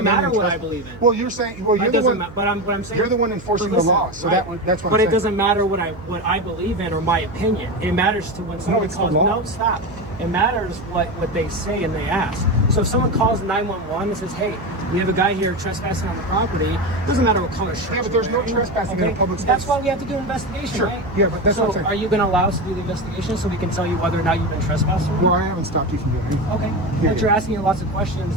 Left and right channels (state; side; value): noise; right; hum, 17 dB below the sound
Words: come in matter and what I trespass. believe in. Well, you're saying, well, you're It the doesn't one. what I'm saying. You're the one enforcing But listen, the law, so right. that's what But I'm it saying. doesn't matter what I believe in or my opinion. It matters to when someone it's the calls. law. No, stop. It matters what they say and they ask. So if someone calls 911 and says, "Hey, we have a guy here trespassing on the property," it doesn't matter what color shirt. Yeah, but you're there's no wearing, trespassing in a public space. That's why we have to do an investigation, Sure. right? Yeah, but that's so what I'm saying. are you going to allow us to do the investigation so we can tell you whether or not you've been trespassed? Or not? Well, I haven't stopped you from doing anything. Okay. Yeah, But you're asking lots of questions